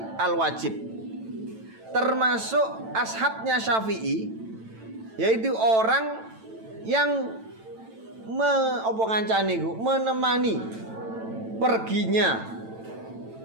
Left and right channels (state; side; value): late; left; 9.0 ms